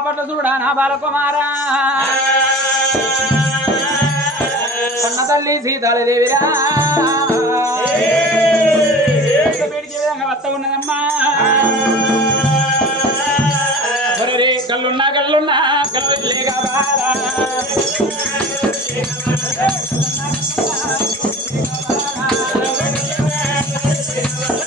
చూడ నా బాలకుమారా కన్న తల్లి సీతాదేవిరా బయటికి విధంగా వస్త ఉన్నదమ్మా కళ్ళున్నా కళ్ళున్నా కళ్ళు లేక బారా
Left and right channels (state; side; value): normal; both; correlation 0.39